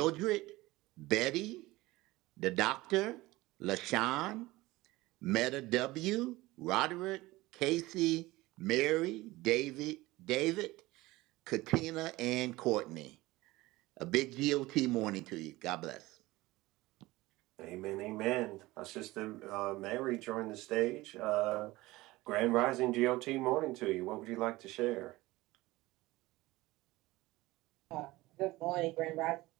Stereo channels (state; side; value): quieter; left; 19.4 dB